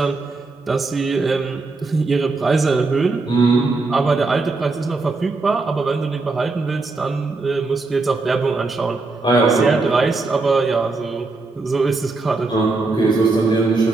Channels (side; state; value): left; quieter; 3.6 dB